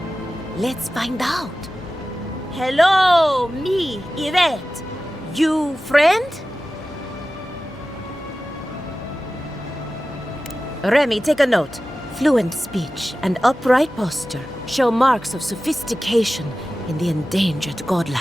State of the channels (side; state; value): both; normal; correlation 0.95